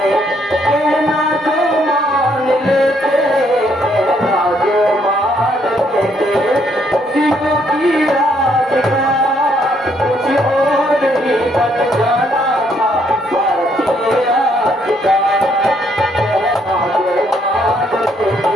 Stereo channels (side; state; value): both; normal; correlation 0.70